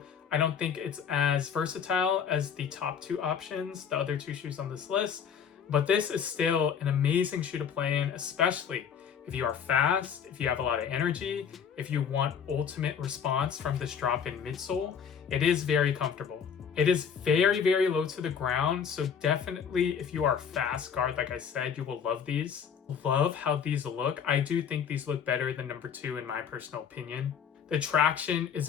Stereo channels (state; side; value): quieter; right; 7.4 dB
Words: I don't think it's as versatile as the top 2 options, the other 2 shoes on this list, but this is still an amazing shoe to play in, especially if you are fast, if you have a lot of energy, if you want ultimate response from this drop-in midsole. It is very comfortable. It is very low to the ground, so definitely if you are a fast guard, like I said, you will love these. Love how these look. I do think these look better than number 2 in my personal opinion. The traction